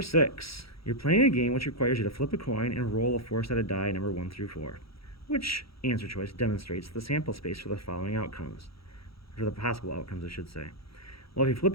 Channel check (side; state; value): right; late; 0.76 ms